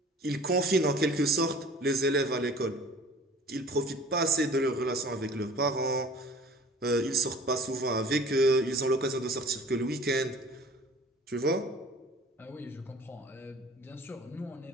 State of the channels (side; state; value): both; normal; correlation 0.47